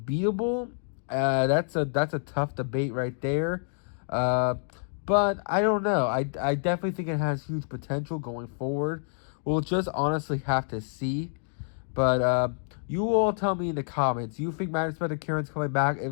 That's a tough debate right there. But I don't know. I definitely think it has huge potential going forward. We'll just honestly have to see. But you all tell me in the comments. Do you think Majespecter Kirin's coming back?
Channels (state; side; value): silent; right; digital silence